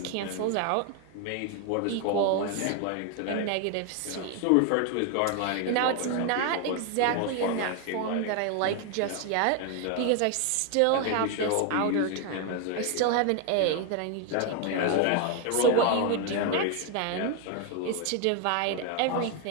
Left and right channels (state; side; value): different; both; correlation 0.01